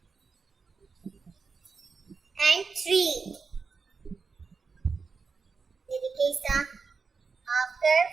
and 3. ये देखिए इसका हाफ कर्व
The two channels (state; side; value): quieter; left; 4.9 dB